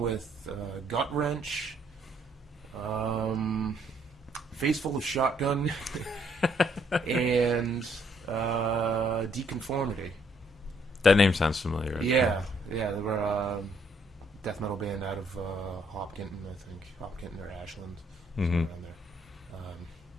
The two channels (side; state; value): both; normal; correlation 0.68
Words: Gut Wrench, Face Full of Shotgun, and Deconformity. That name sounds familiar. Yeah, they were a death metal band out of Hopkinton, I think. Hopkinton or Ashland, somewhere around there.